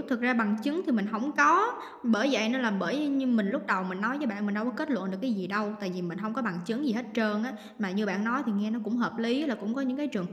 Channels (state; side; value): identical; both; correlation 1.00